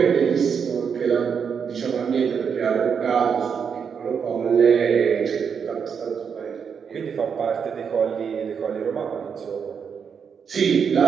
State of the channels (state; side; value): quieter; left; 6.7 dB